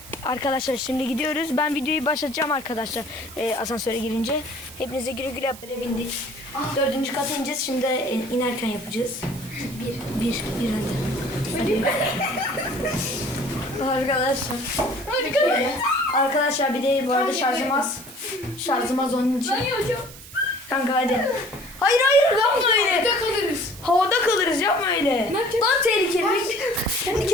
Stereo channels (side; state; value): right; noise; hiss, 17 dB below the sound